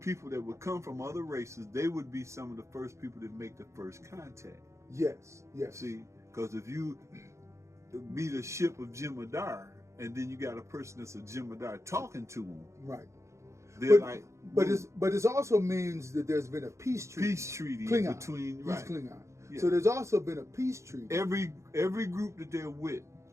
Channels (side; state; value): left; late; 0.14 ms